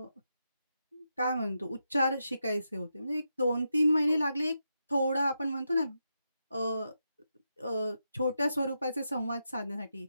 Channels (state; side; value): inverted; both; correlation -0.85